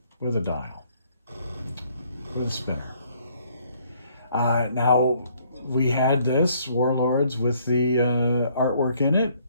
dial, with a spinner. Now, we had this, Warlords, with the artwork in it,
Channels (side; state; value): both; inverted; correlation -0.65